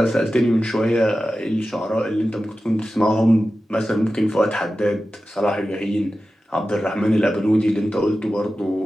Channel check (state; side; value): normal; both; correlation 0.94